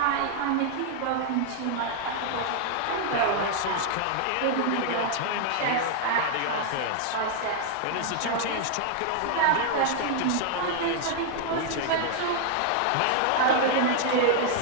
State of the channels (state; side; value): different; both; correlation 0.00